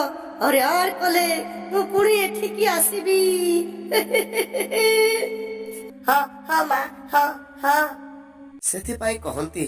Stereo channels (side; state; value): both; identical; correlation 1.00